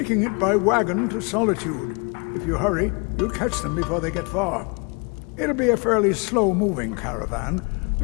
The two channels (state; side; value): quieter; right; 31.6 dB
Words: it by wagon to Solitude. If you hurry, you'll catch them before they get far. It'll be a fairly slow-moving caravan.